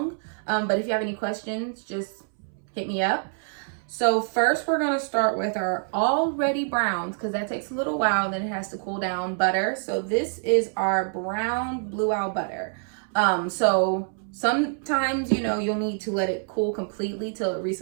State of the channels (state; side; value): silent; left; 61 dB below the other